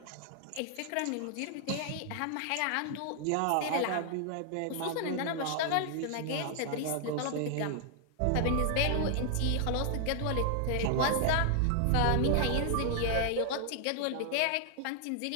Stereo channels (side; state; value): both; different; correlation 0.00